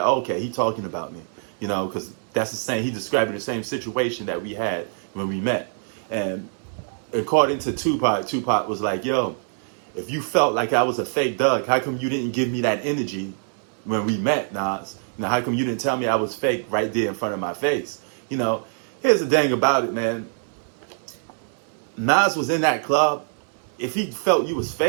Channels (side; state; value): left; silent; 62 dB below the other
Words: oh, okay, he talking about me. Because that's the same, he describing the same situation that we had when we met. And according to Tupac, Tupac was like, yo, if you felt like I was a fake Doug, how come you didn't give me that energy when we met, Nas? How come you didn't tell me I was fake right there in front of my face? Here's the thing about it, man. Nas was in that club. If he felt you was